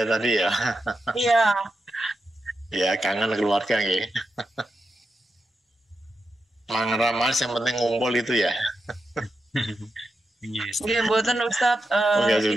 ya tadi ya. Iya. Ya kangen keluarga nggih. Mang Ramas yang penting ngumpul itu ya. Iya mboten Ustadz.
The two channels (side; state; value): both; normal; correlation 0.88